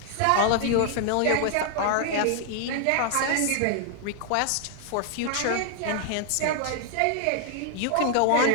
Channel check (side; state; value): both; different; correlation 0.00